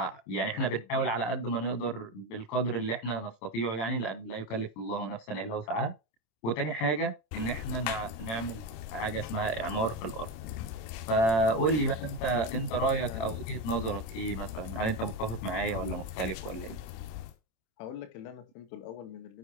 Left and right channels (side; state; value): right; late; 27 ms